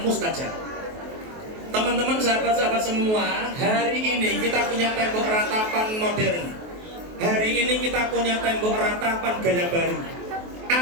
mustajab. Teman-teman, sahabat-sahabat semua, hari ini kita punya tembok ratapan modern. Hari ini kita punya tembok ratapan gaya baru.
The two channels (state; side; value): late; left; 23 ms